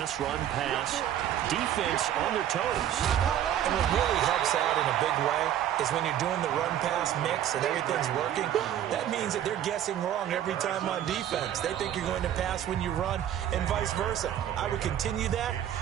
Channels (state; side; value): quieter; left; 11.0 dB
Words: defense on their toes. And what really helps out in a big way is when you're doing the run-pass mix and everything's working, that means that they're guessing wrong every time on defense. They think you're going to pass when you run and vice versa. I would continue that,